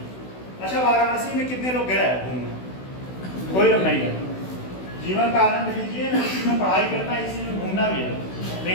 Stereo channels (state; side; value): late; right; 16 ms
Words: अच्छा, वाराणसी में कितने लोग गए घूमने? कोई लोग नहीं गए। जीवन का आनंद लीजिए, इसी में पढ़ाई करना, इसी में घूमना भी है,